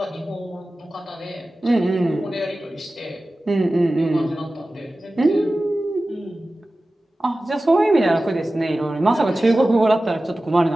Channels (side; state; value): both; normal; correlation 0.96